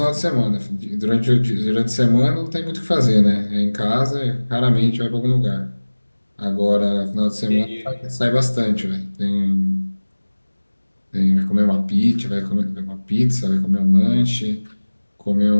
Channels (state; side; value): inverted; both; correlation -1.00